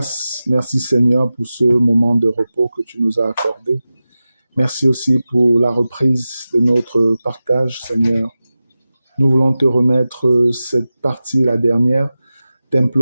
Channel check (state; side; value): inverted; both; correlation -0.95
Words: Merci Seigneur pour ce moment de repos que tu nous as accordé. Merci aussi pour la reprise de notre partage, Seigneur. Nous voulons te remettre cette partie, la dernière,